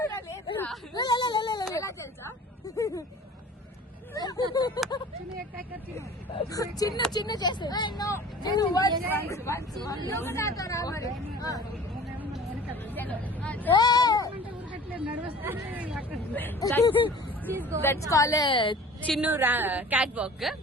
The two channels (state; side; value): normal; both; correlation 0.44